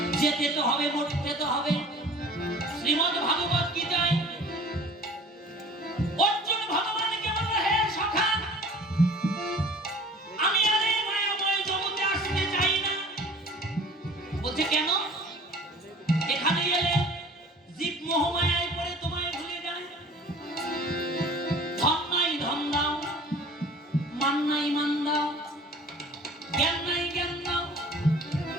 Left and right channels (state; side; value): normal; both; correlation 0.46